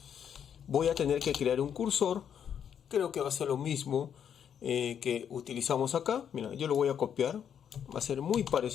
Voy a tener que crear un cursor. Creo que va a ser lo mismo que utilizamos acá. Mira, yo lo voy a copiar. Va a ser muy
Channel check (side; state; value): right; quieter; 8.5 dB